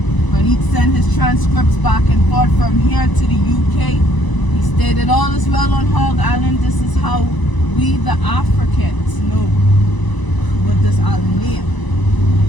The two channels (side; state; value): right; late; 1.0 ms